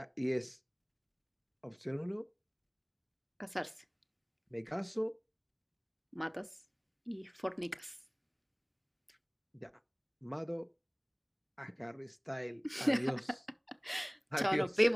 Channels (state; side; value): identical; both; correlation 1.00